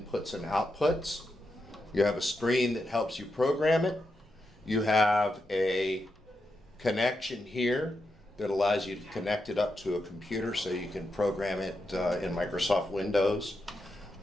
and outputs. You have a screen that helps you program it. You have a connection here that allows you to connect it up to a computer so you can program it in Microsoft Windows.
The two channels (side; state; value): both; normal; correlation 0.86